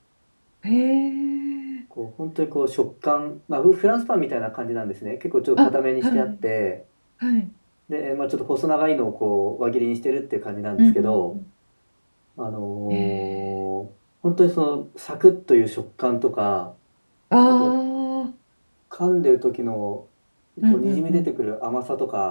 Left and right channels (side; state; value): both; inverted; correlation -1.00